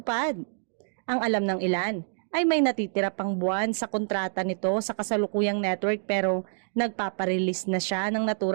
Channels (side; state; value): left; silent; digital silence